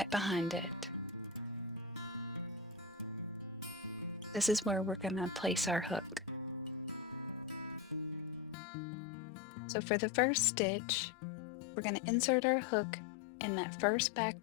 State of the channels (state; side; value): drops out; right; at 8.6 s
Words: behind it. This is where we're going to place our hook. So for the first stitch, we're going to insert our hook in that first back